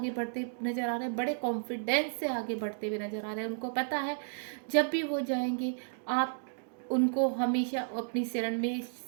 बढ़ते नज़र आ रहे हैं, बड़े कॉन्फिडेंस से आगे बढ़ते हुए नज़र आ रहे हैं। उनको पता है जब भी वो जाएंगे आप उनको हमेशा अपनी शरण में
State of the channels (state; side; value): silent; left; digital silence